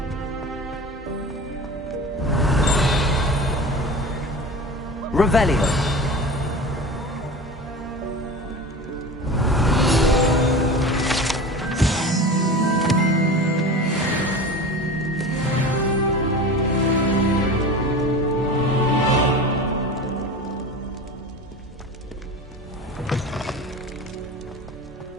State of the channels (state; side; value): normal; both; correlation 0.33